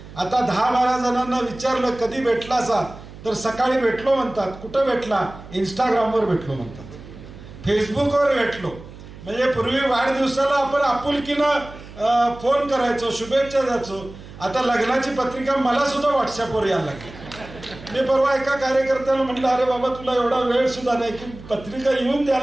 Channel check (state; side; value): noise; right; hum, 17 dB below the sound